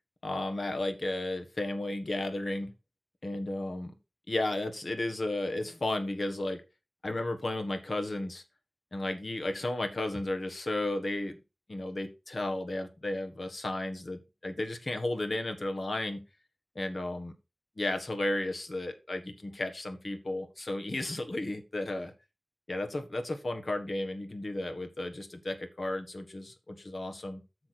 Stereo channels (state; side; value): normal; both; correlation 0.96